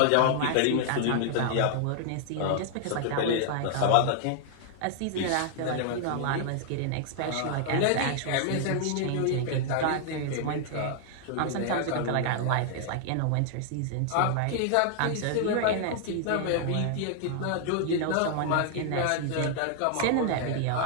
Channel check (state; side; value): different; both; correlation 0.00